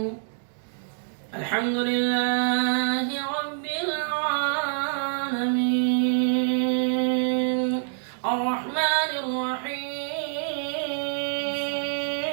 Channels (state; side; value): silent; left; digital silence